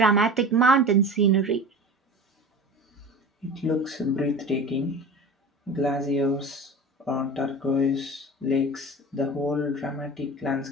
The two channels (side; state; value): both; normal; correlation 0.34